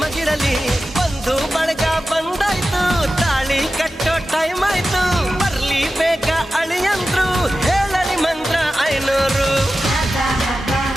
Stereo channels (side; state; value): both; normal; correlation 0.93